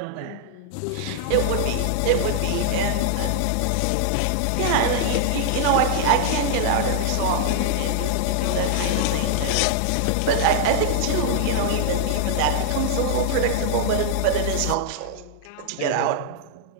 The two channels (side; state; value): both; different; correlation -0.01